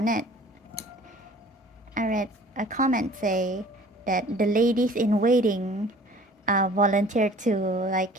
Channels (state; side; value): normal; both; correlation 0.49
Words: I read a comment say that the ladies in waiting volunteered to like